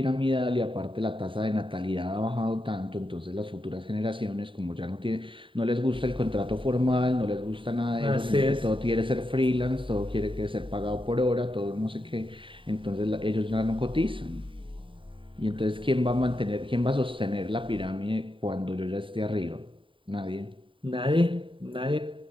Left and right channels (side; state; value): left; late; 0.25 ms